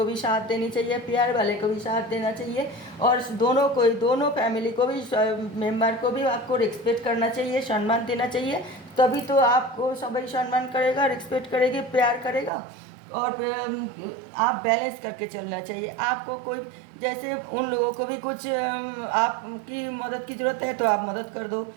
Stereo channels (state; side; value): drops out; left; at 12.5 s